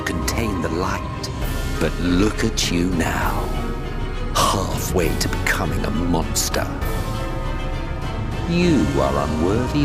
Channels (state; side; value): identical; both; correlation 1.00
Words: contain the light. But look at you now, halfway to becoming a monster. You are unworthy